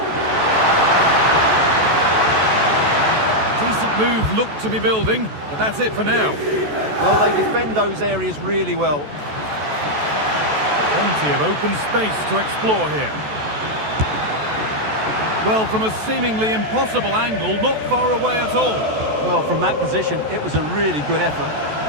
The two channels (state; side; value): late; left; 14 ms